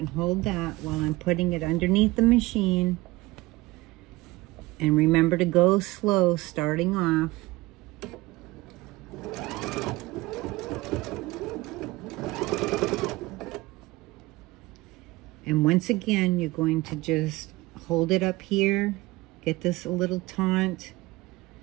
hold that while I'm putting it underneath the machine. And remember to go slow starting off. And once again, you're going to just hold it up here, get this a little taut,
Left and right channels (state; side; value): quieter; left; 20.6 dB